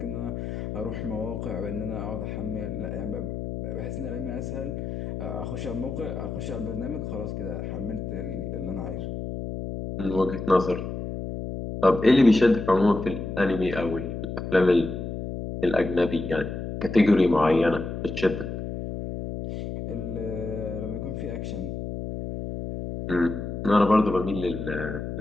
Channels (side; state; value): left; noise; hum, 5 dB below the sound